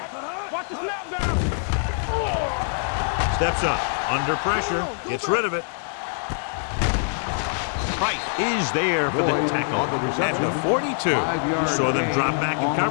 Watch the snap down. Steps up, under pressure, gets rid of it. Price is there for the tackle at the 42. You saw them drop back in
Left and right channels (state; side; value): silent; right; digital silence